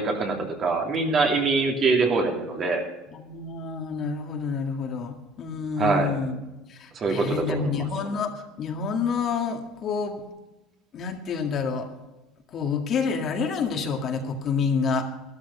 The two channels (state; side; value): normal; both; correlation 0.52